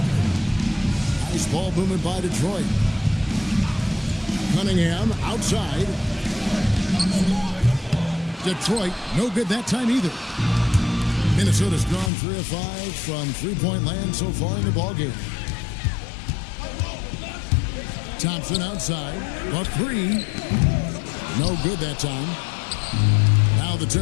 Nice ball movement by Detroit. Cunningham outside. Detroit, no good that time either. Minnesota's gone 3 of 5 from three-point land so far in the ballgame. Thompson outside. A 3. No good that time. Now the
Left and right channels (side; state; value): right; drops out; at 12.1 s